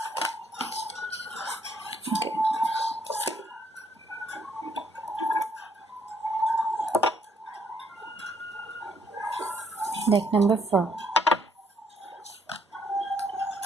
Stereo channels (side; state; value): both; normal; correlation 0.69